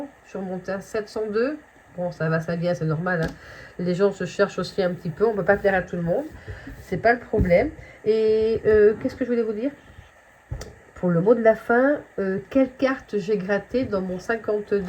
je suis remontée à 702. Bon, ça va, ça vient, c'est normal, hein. Les gens se cherchent aussi un petit peu, on ne peut pas plaire à tout le monde, c'est pas le problème. Et qu'est-ce que je voulais vous dire? Pour le mot de la fin, quelle carte j'ai gratté dans mon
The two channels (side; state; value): both; identical; correlation 1.00